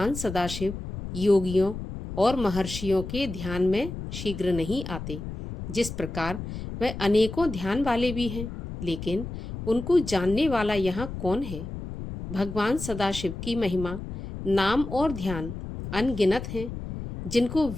सदाशिव योगियों और महर्षियों के ध्यान में शीघ्र नहीं आते। जिस प्रकार वह अनेकों ध्यान वाले भी हैं, लेकिन उनको जानने वाला यहाँ कौन है? भगवान सदाशिव की महिमा, नाम और ध्यान अनगिनत हैं, जिनको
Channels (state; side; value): noise; left; rumble, 8 dB below the sound